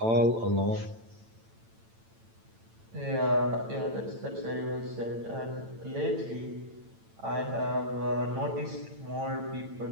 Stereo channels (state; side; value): late; left; 8.9 ms